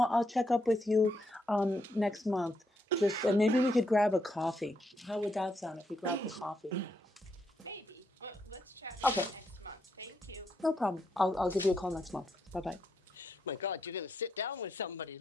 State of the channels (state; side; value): normal; both; correlation 0.79